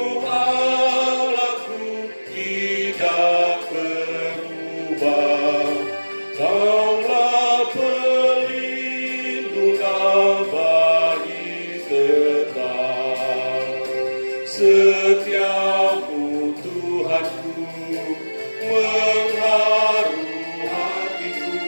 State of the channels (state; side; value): inverted; both; correlation -1.00